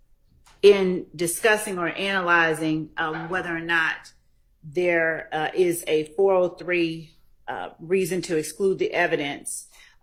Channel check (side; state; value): both; identical; correlation 1.00